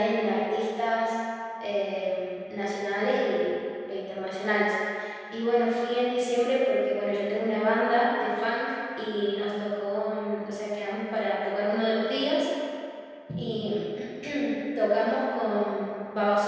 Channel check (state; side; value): identical; both; correlation 1.00